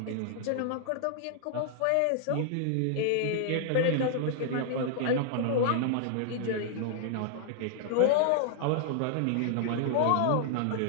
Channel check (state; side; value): different; both; correlation -0.01